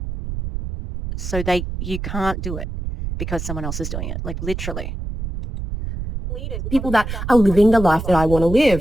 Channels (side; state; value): right; noise; rumble, 6 dB below the sound